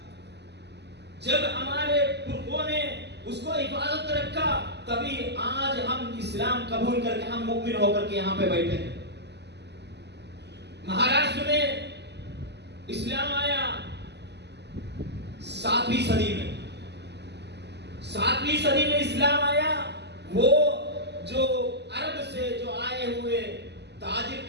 جب ہمارے پرخوں نے اس کو حفاظت رکھا تبھی آج ہم اسلام قبول کر کے، ہم مؤمن ہو کر کے یہاں پہ بیٹھے ہیں. مہاراشٹر میں اسلام آیا 7ویں صدی میں. 7ویں صدی میں اسلام آیا. وہ جو عرب سے جو آئے ہوئے تاجر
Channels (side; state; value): left; late; 0.50 ms